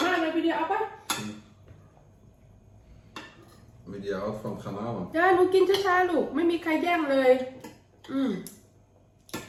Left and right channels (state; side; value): identical; both; correlation 1.00